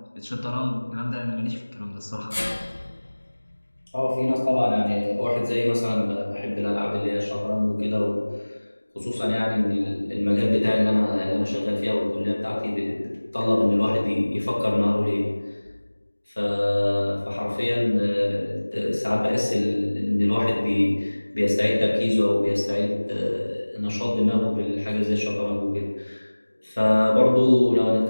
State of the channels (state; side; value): inverted; both; correlation -1.00